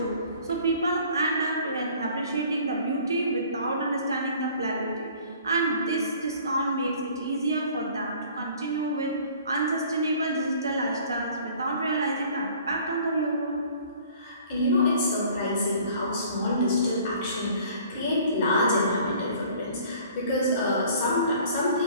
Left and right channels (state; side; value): inverted; both; correlation -0.52